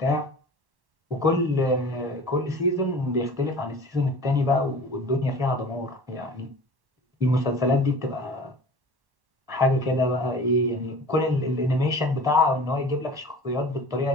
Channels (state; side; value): late; left; 1.1 ms